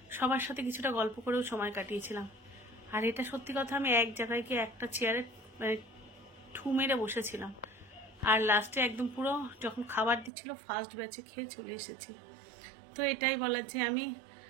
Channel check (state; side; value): drops out; left; at 10.3 s